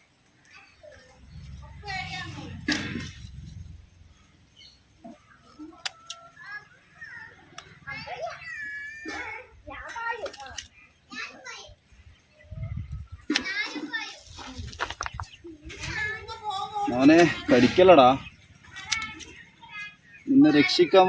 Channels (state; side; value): identical; both; correlation 1.00